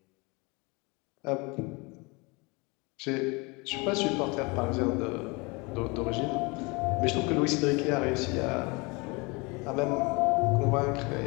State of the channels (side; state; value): right; quieter; 27.6 dB